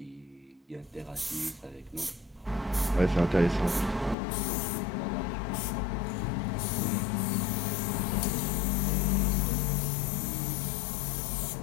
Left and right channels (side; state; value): right; drops out; at 4.2 s